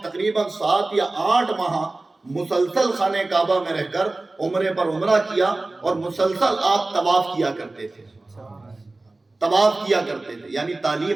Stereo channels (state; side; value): quieter; left; 3.1 dB